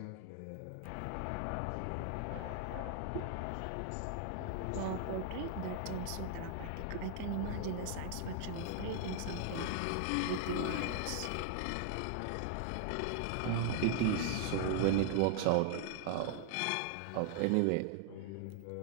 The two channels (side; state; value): both; different; correlation 0.00